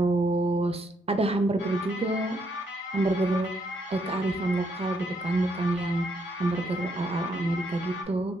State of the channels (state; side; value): normal; both; correlation 0.74